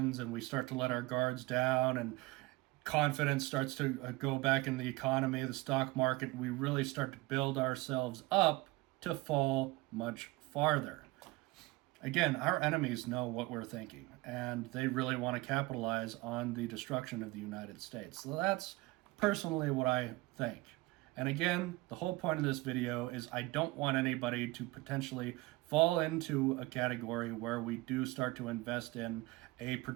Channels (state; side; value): quieter; left; 20.9 dB